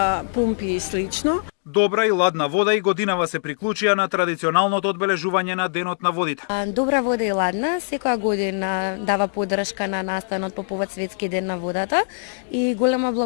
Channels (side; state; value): right; silent; digital silence